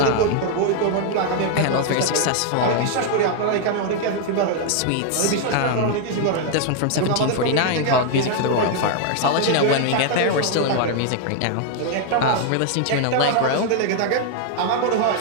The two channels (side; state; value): both; different; correlation 0.00